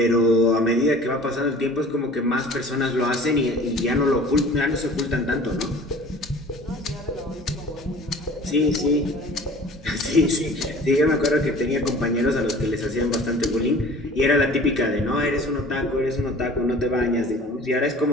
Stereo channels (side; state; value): both; normal; correlation 0.45